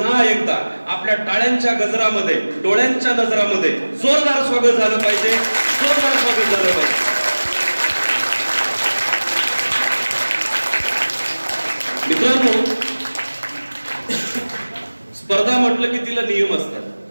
एकदा आपल्या टाळ्यांच्या गजरामध्ये, डोळ्यांच्या नजरामध्ये जोरदार स्वागत झालं पाहिजे. जोरदार स्वागत झालं पाहिजे. मित्रांनो, स्पर्धा म्हटलं की तिला नियम असतात.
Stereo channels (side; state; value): both; inverted; correlation -1.00